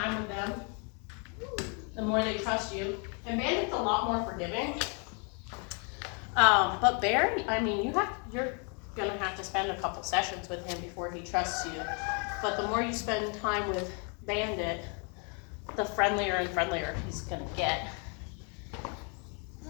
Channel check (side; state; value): right; quieter; 36.7 dB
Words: with them, the more they trust you. And Bandit's a lot more forgiving. But Bear, I mean, you're gonna have to spend a couple sessions with him before he trusts you. But the more you spend time with Bandit, the friendlier and friendlier he's gonna get.